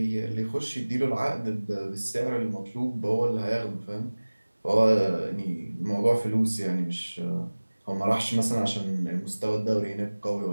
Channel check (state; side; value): inverted; both; correlation -1.00